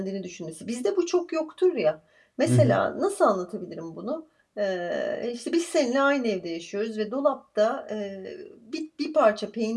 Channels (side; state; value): both; identical; correlation 1.00